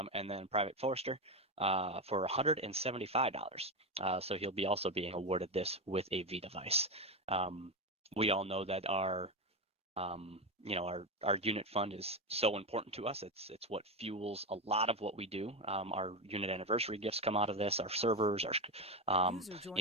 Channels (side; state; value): both; normal; correlation 0.13